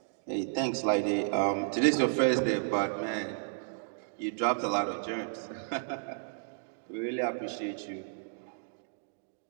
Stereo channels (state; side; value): silent; left; digital silence